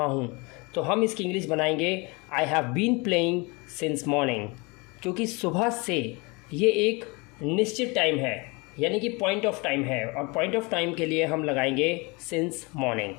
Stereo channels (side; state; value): right; quieter; 27.5 dB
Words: हूँ तो हम इसकी इंग्लिश बनाएंगे I have been playing since morning, क्योंकि सुबह से ये एक निश्चित टाइम है यानी कि पॉइंट ऑफ टाइम है, और पॉइंट ऑफ टाइम के लिए हम लगाएंगे सिंस मॉर्निंग।